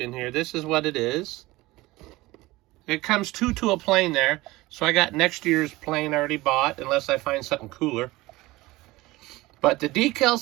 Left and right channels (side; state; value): left; quieter; 19.8 dB